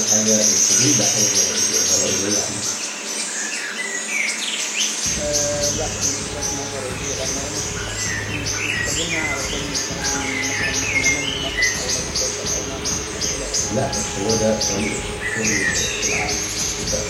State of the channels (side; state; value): both; identical; correlation 1.00